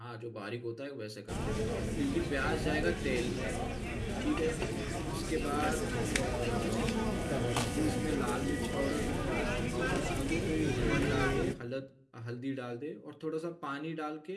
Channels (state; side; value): identical; both; correlation 1.00